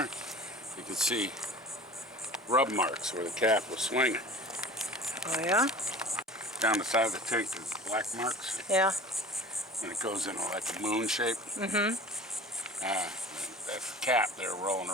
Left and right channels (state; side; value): normal; both; correlation 0.39